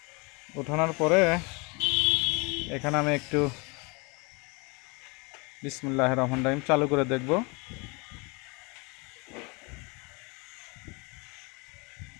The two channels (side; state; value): right; quieter; 29.0 dB